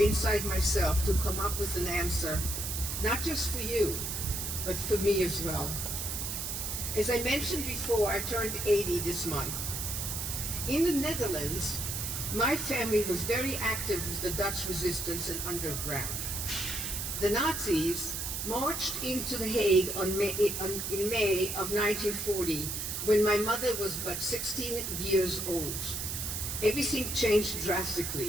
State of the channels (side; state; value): right; noise; hiss, 3 dB below the sound